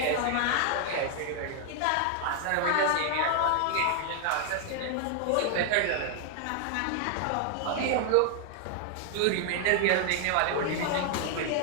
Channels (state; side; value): different; both; correlation 0.00